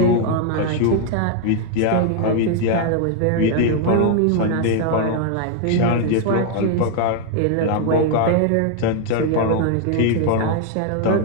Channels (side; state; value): both; different; correlation 0.00